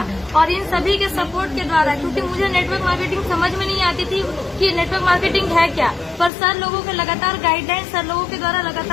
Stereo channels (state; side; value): drops out; right; at 6.3 s